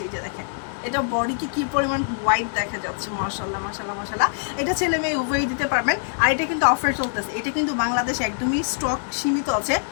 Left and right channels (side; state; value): right; silent; digital silence